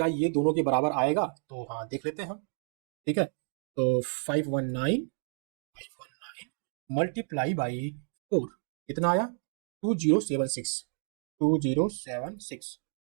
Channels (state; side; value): silent; left; 57 dB below the other